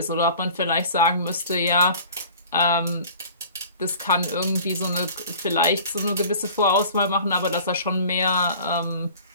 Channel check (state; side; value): inverted; both; correlation -0.44